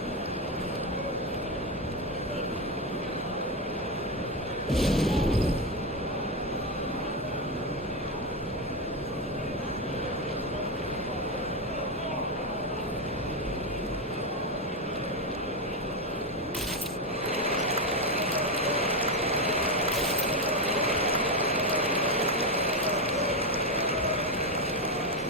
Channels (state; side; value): normal; both; correlation 0.10